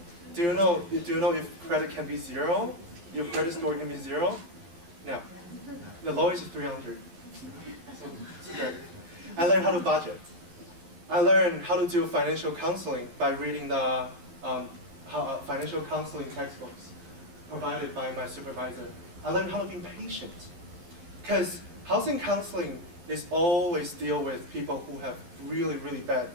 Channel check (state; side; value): late; left; 12 ms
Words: Do you know if credit can be 0? Your credit score can be 0? No. The lowest is 300. So it's great. I learned how to budget. I learned how to do financial counseling by reading the financial counseling textbooks provided by my supervisor. I learned how to be patient, because housing counseling is always deal with people who have really, really bad